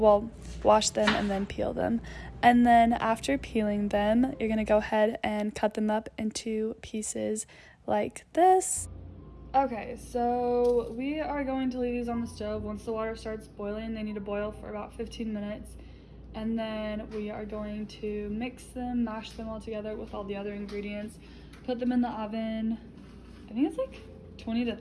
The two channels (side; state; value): both; identical; correlation 1.00